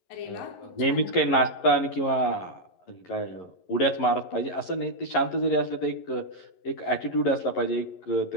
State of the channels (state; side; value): late; right; 11 ms